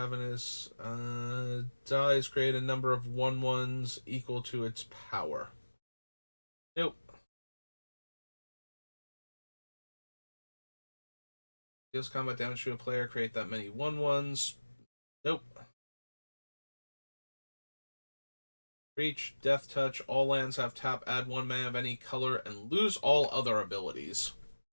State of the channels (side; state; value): both; inverted; correlation -1.00